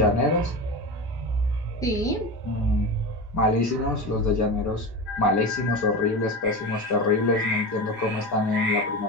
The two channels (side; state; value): both; normal; correlation 0.24